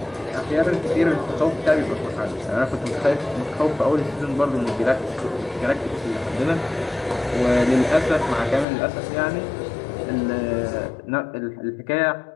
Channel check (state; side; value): drops out; right; at 8.7 s